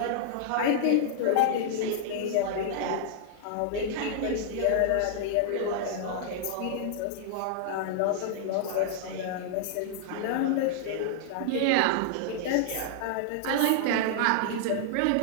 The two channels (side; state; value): both; different; correlation -0.01